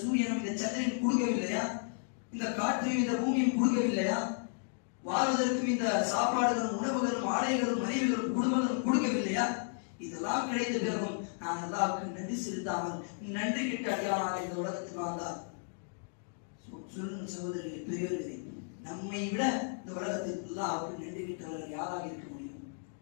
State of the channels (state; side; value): silent; right; digital silence